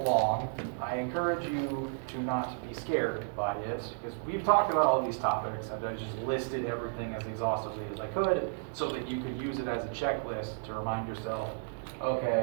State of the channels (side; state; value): left; silent; 56 dB below the other